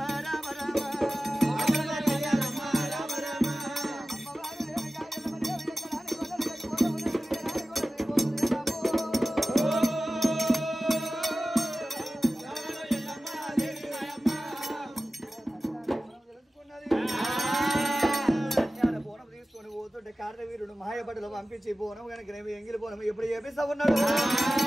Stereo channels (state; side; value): normal; both; correlation 0.96